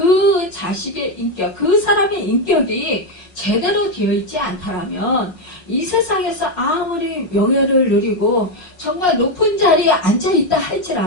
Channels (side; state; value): right; late; 5.5 ms